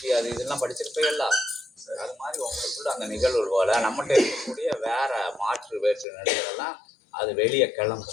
அது இதெல்லாம் படிச்சிருப்பீங்கல்ல. அது மாதிரி உங்களுக்குள்ள அந்த நிகழ்வு போல நம்மகிட்ட இருக்கக்கூடிய வேற மாற்று வேற்று நிலைகளெல்லாம் அது வெளியே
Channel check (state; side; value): drops out; right; at 6.1 s